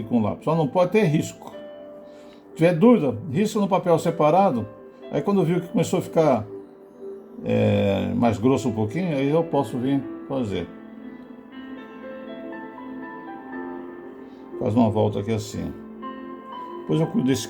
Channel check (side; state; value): both; identical; correlation 1.00